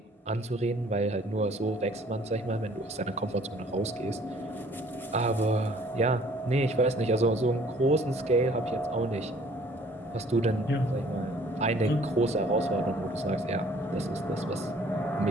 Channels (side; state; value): both; normal; correlation 0.56